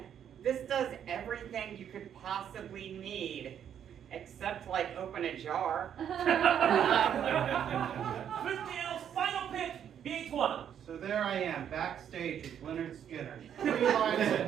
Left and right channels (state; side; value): quieter; left; 9.1 dB